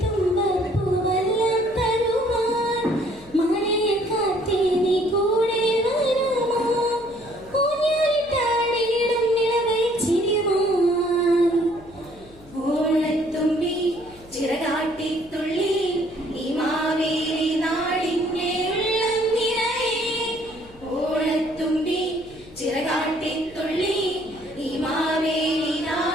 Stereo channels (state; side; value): noise; left; hum, 24 dB below the sound